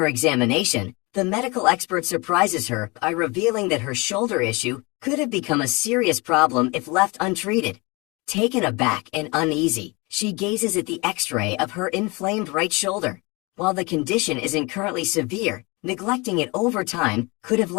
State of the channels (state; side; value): quieter; right; 26.5 dB